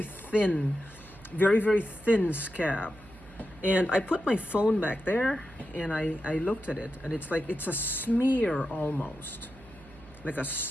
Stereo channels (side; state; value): right; noise; hum, 22 dB below the sound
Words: thin, very thin scab. And I put my phone back there and I looked at it, and it's like it's a smear, almost like a